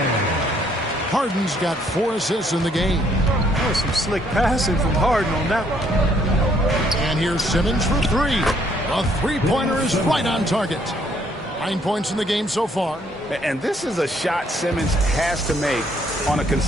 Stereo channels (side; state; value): both; normal; correlation 0.67